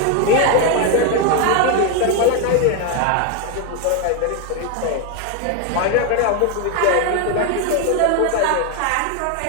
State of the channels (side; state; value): both; different; correlation 0.01